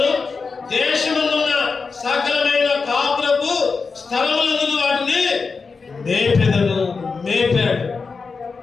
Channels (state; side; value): quieter; right; 4.7 dB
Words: దేశమున్న సకలమైన కాపురపు స్థలములందు వాటిని మేపాడు.